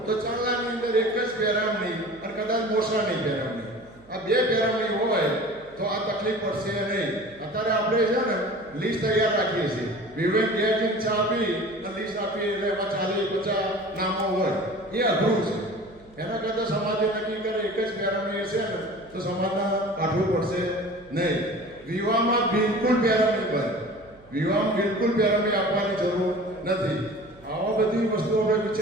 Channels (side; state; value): right; noise; hum, 27 dB below the sound